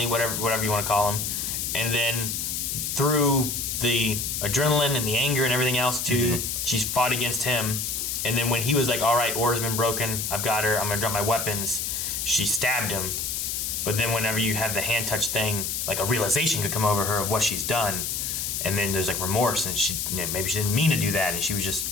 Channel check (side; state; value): left; noise; hiss, 2 dB below the sound